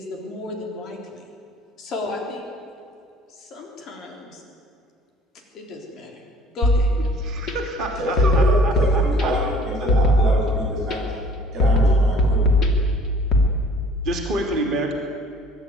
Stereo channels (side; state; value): both; normal; correlation 0.52